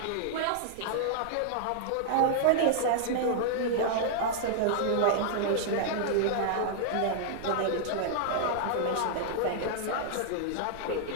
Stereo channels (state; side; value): different; both; correlation -0.01